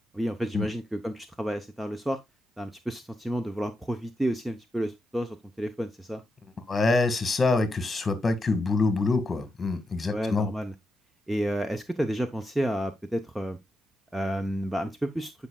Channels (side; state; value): both; normal; correlation 0.86